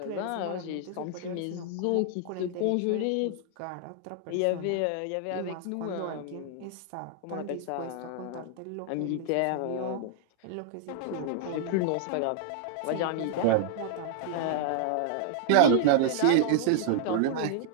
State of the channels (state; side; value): different; both; correlation -0.01